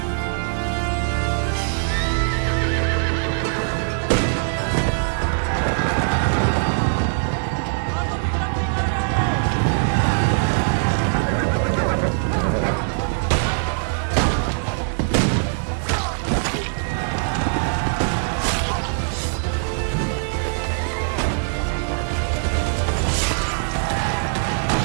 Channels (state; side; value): silent; left; digital silence